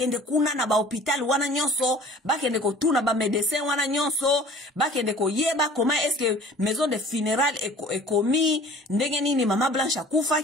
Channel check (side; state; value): both; normal; correlation 0.47